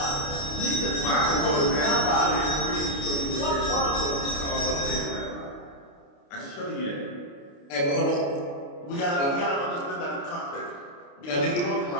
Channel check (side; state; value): right; late; 29 ms